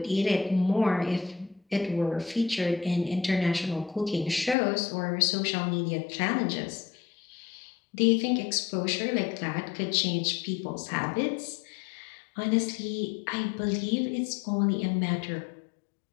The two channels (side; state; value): right; drops out; at 4.5 s